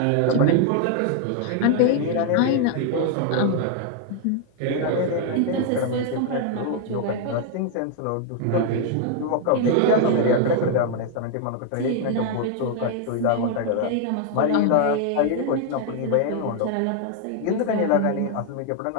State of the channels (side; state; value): both; different; correlation 0.00